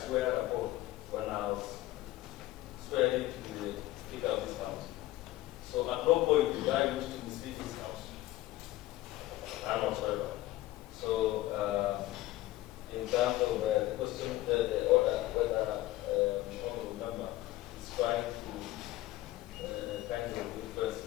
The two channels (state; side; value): quieter; right; 16.7 dB